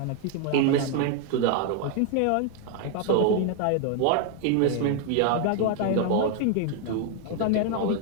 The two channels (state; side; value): different; both; correlation 0.00